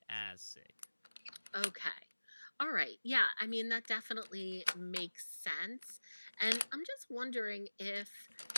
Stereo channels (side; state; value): both; inverted; correlation -1.00